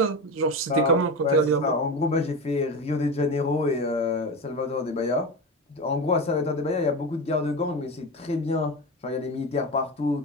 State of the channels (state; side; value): normal; both; correlation 0.22